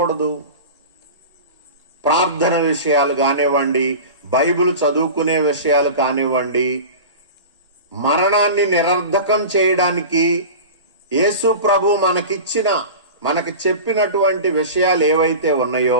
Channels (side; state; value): both; inverted; correlation -0.33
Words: ప్రార్థన విషయాలు కానివ్వండి, బైబిల్ చదువుకునే విషయాలు కానివ్వండి, మరణాన్ని నిరర్ధకం చేయడానికి యేసు ప్రభు మనకి చెప్పినటువంటి విషయాలు ఏవైతే